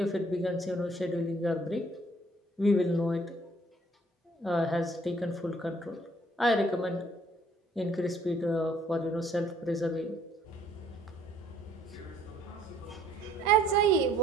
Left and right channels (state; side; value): normal; both; correlation 0.61